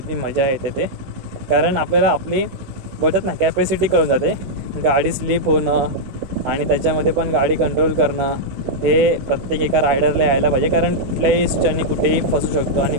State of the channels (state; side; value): late; left; 16 ms